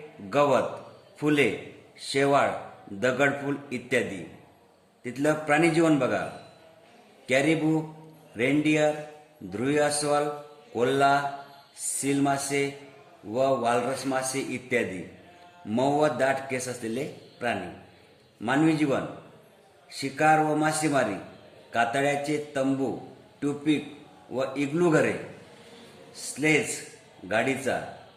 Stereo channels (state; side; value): identical; both; correlation 1.00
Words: गवत, फुले, शेवाळ, दगडफूल इत्यादी. तिथलं प्राणीजीवन बघा. कॅरिबू, रेनडियर, ध्रुवी अस्वल, कोल्हा, सील मासे व वालरस मासे इत्यादी. मऊ व दाट केस असलेले प्राणी. मानवी जीवन. शिकार व मासेमारी, कातळ्याचे तंबू, ट्यूपिक व इग्लू घरे, स्लेज गाडीचा